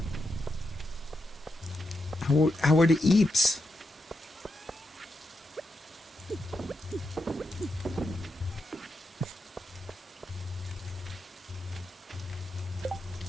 How are the eeps?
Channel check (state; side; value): normal; both; correlation 0.85